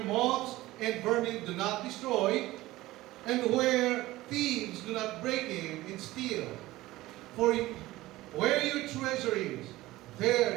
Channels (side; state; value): left; quieter; 17.7 dB